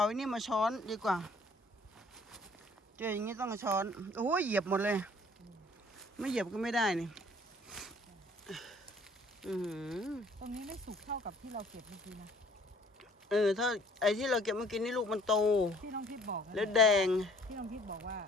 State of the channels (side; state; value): both; normal; correlation 0.56